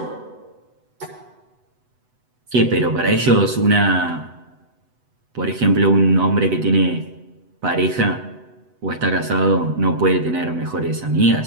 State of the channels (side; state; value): left; late; 8.0 ms